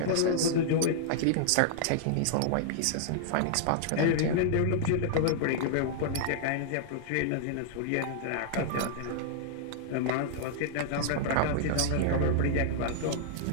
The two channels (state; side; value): different; both; correlation -0.01